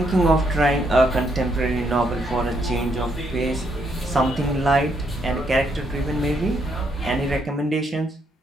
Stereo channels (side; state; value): both; normal; correlation 0.75